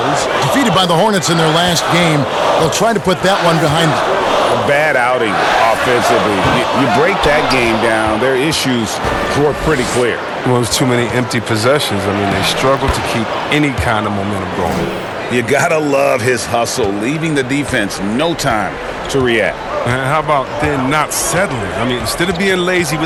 Defeated by the Hornets in their last game, they'll try to put that one behind them. A bad outing offensively. You break that game down, their issues were pretty clear. Well, there's too many empty possessions. I mean, they struggle to keep any kind of momentum going. You gotta love his hustle, leaving the defense no time to react. And how about then not settling? I mean, instead of being lazy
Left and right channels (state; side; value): identical; both; correlation 1.00